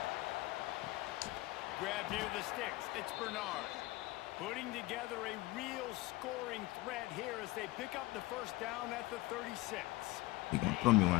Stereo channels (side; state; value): right; quieter; 20.0 dB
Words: Grab near the sticks. It's Bernard. Putting together a real scoring threat here as they pick up the first down at the 36. He gonna throw me one